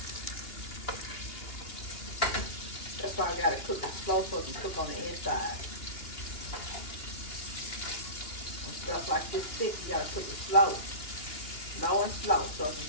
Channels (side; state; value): right; late; 2.8 ms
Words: That's why I gotta cook it slow so it can cook on the inside. When stuff like this thick, you gotta cook it slow. Low and slow so it can